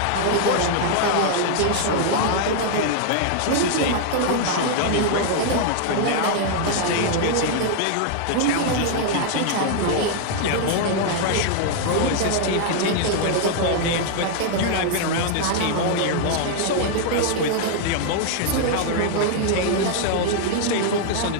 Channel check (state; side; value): different; both; correlation 0.00